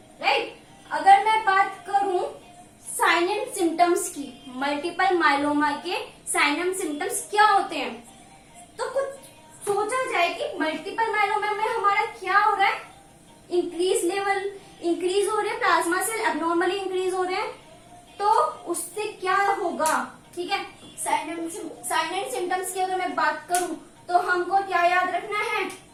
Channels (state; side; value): identical; both; correlation 1.00